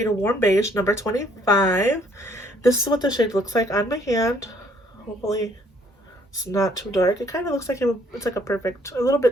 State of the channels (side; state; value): both; normal; correlation 0.64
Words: Warm Beige, number 25. This is what the shade looks like on my hand. Hopefully it's not too dark. It kind of looks like it's like a little